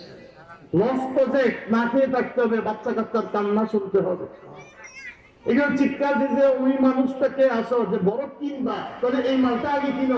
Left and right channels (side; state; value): both; identical; correlation 1.00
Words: লস প্রজেক্ট, না খেয়ে থাকতে হবে, বাচ্চা কাচ্চার কান্না শুনতে হবে। এগুলো চিৎকার দিতে ওই মানুষটাকে আসো যে বড় কিনবা, তাহলে এই মালটা আগে কিনো,